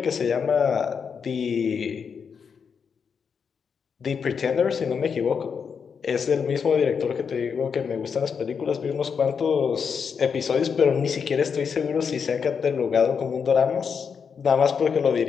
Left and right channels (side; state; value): right; quieter; 6.4 dB